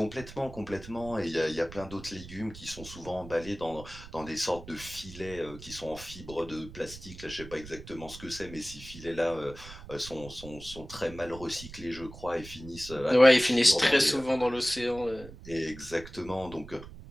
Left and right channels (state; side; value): noise; right; rumble, 15 dB below the sound